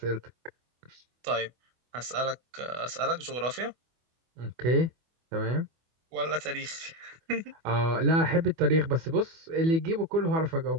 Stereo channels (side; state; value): left; late; 24 ms